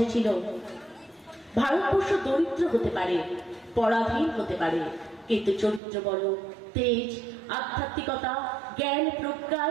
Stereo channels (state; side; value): drops out; left; at 5.8 s